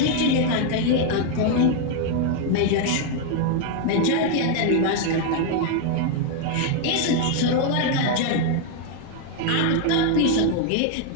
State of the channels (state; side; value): different; both; correlation 0.01